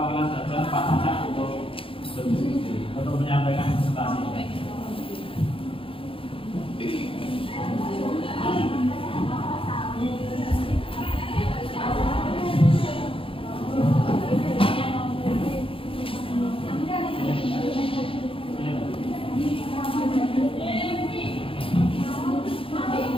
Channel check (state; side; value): late; right; 0.26 ms